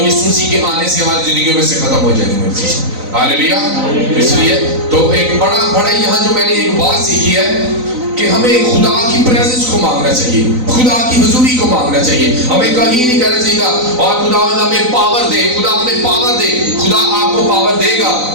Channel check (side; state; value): left; late; 3.9 ms